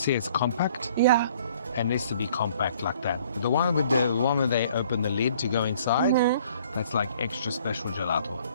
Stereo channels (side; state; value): both; inverted; correlation -0.58